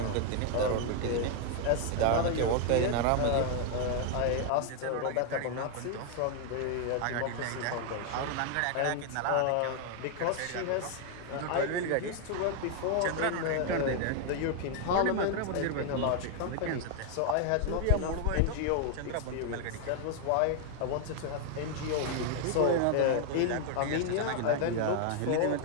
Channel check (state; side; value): different; both; correlation 0.00